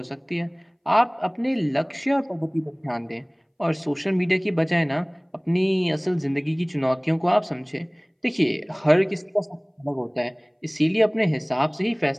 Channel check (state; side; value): identical; both; correlation 1.00